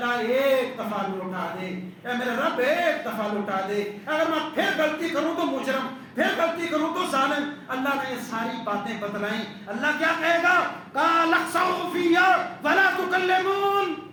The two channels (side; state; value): both; identical; correlation 1.00